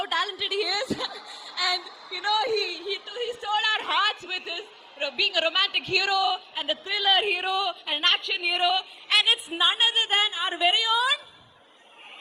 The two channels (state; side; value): identical; both; correlation 1.00